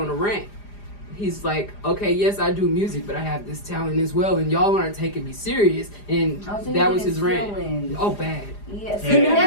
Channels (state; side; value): late; right; 4.9 ms